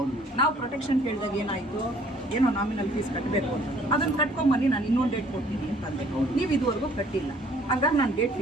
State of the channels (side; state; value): both; normal; correlation 0.58